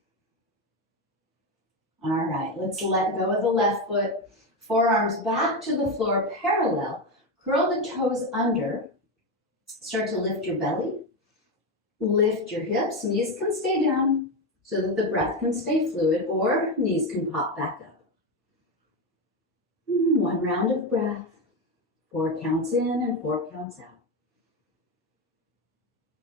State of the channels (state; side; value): normal; both; correlation 0.13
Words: All right, let's let go of the left foot. Forearms back to the floor parallel. Curl the toes under. Start to lift your belly. Lift your hips. Knees can stay down so that the breath can stay fluid, or knees can pop back up. One round of breath. 4 counts in and 4 counts out.